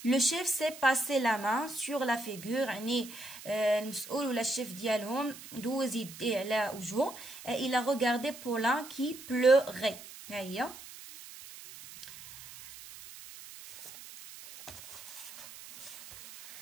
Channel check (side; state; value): right; noise; hiss, 15 dB below the sound